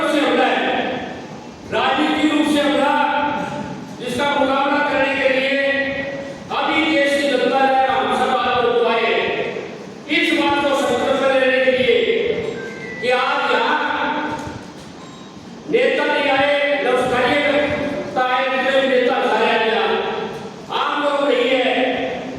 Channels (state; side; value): identical; both; correlation 1.00